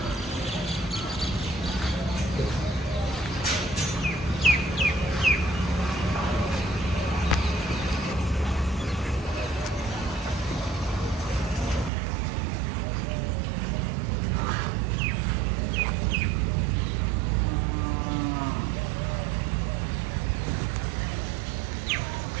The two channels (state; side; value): drops out; left; at 11.9 s